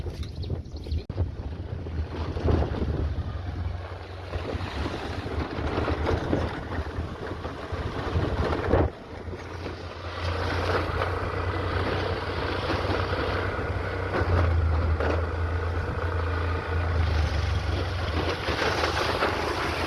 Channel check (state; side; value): identical; both; correlation 1.00